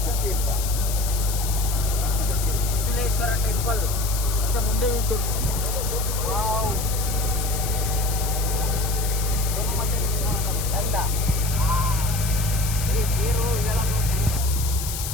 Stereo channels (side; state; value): left; noise; hiss, 6 dB below the sound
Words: ಶಿಶಿಲೇಶ್ವರ ಟೆಂಪಲ್ ಮುಂದೆ ಉಂಟು. ವಾವ್, ಚಂದ. ನೀರು ಇದೆಲ್ಲ